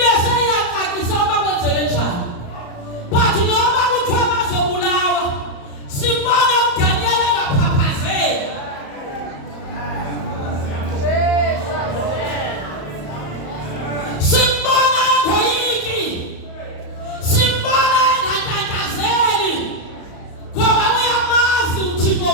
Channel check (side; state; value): right; late; 34 ms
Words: seyiyaqaqisa uba kwenzeke njani. But noba kuthiwa bazobulawa sibona uDaniel engaphaphazeli.